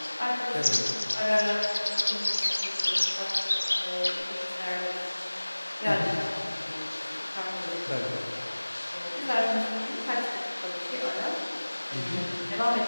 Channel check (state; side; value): inverted; both; correlation -1.00